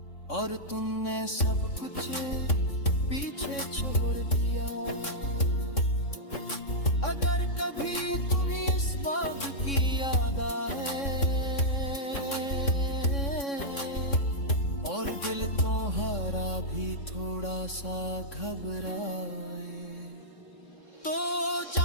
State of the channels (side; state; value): right; late; 3.6 ms